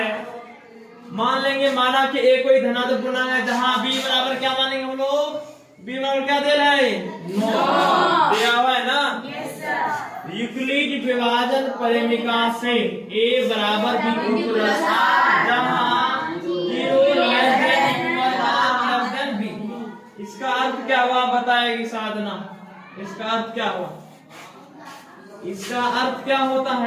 मान लेंगे माना कि ए कोई धनात्मक पूर्णांक है जहां b बराबर क्या मानेंगे हम लोग? b बराबर क्या दे रहा है? 9 दिया हुआ है ना। Yes sir. यूक्लिड विभाजन परिमिका से a बराबर b प्लस जहां 0 लेस देन b। इसका अर्थ क्या हुआ बताएगी साधना? इसका अर्थ क्या हुआ? इसका अर्थ क्या होता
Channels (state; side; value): identical; both; correlation 1.00